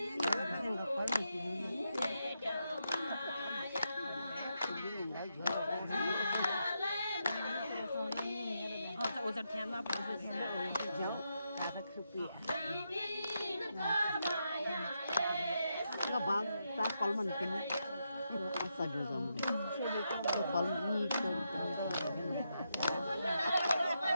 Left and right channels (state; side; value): inverted; both; correlation -0.83